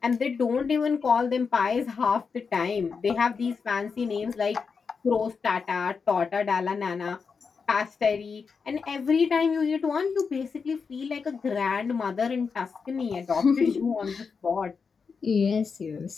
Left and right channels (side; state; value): right; quieter; 5.4 dB